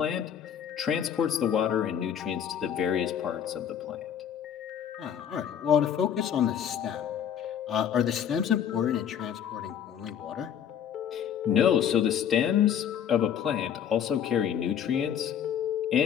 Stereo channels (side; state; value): right; quieter; 8.9 dB